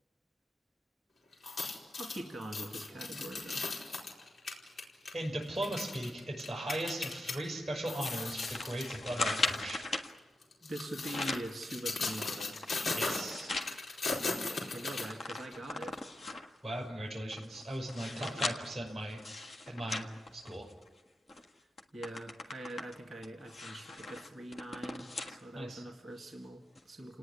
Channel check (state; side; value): normal; both; correlation 0.87